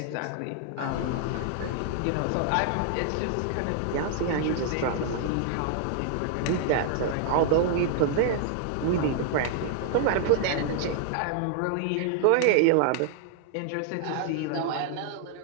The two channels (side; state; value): both; different; correlation 0.00